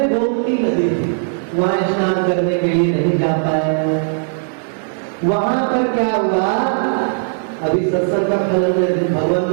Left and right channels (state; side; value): silent; left; digital silence